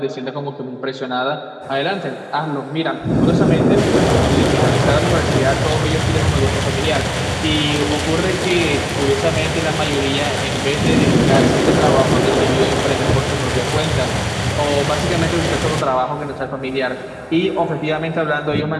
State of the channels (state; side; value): identical; both; correlation 1.00